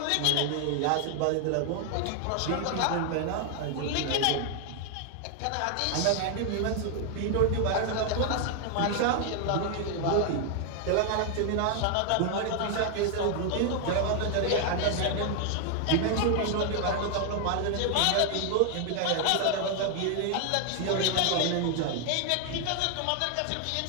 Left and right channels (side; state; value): both; different; correlation 0.00